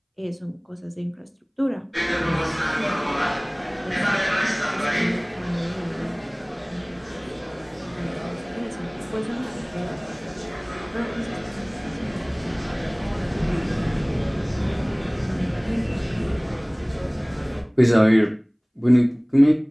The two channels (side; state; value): both; identical; correlation 1.00